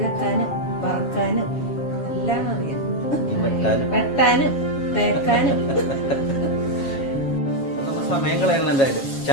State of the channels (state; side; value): late; right; 7.3 ms